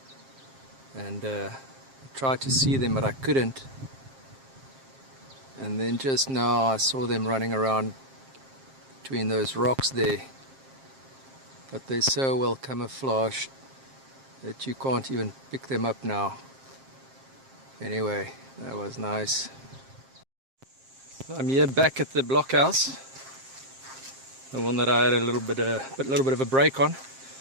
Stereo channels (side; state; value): left; late; 7.5 ms